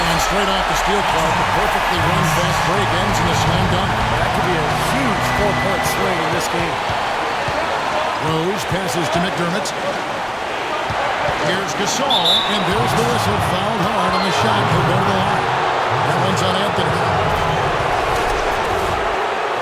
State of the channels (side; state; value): both; identical; correlation 1.00